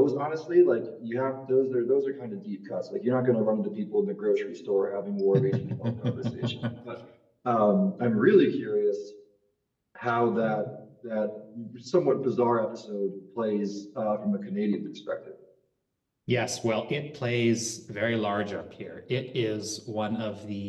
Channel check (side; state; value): both; identical; correlation 1.00